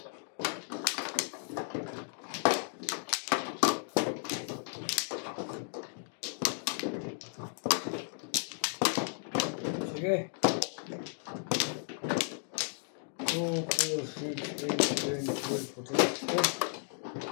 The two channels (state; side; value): silent; right; 55 dB below the other